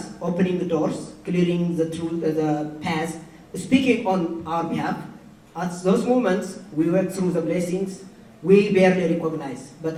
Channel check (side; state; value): both; identical; correlation 1.00